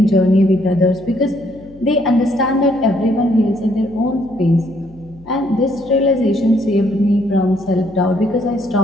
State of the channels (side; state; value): left; noise; hum, 24 dB below the sound